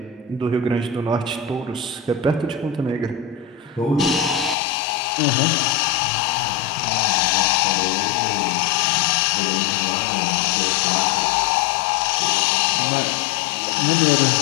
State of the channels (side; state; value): right; drops out; at 4.5 s